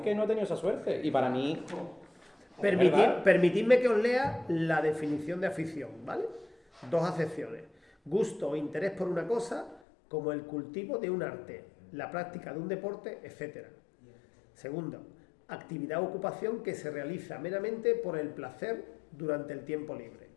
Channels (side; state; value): right; drops out; at 9.8 s